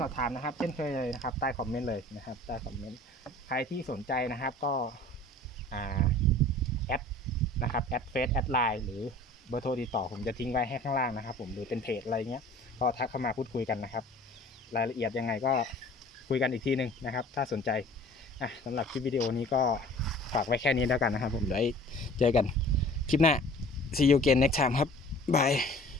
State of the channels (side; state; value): both; normal; correlation 0.47